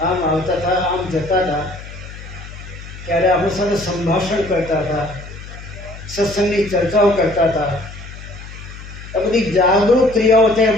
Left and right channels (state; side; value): noise; left; hum, 14 dB below the sound